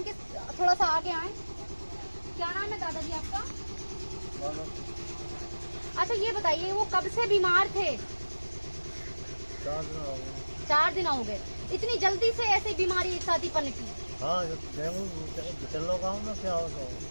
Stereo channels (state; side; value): inverted; both; correlation -1.00